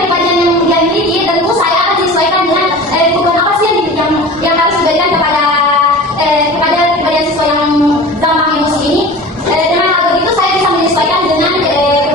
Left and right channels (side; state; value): both; normal; correlation 0.37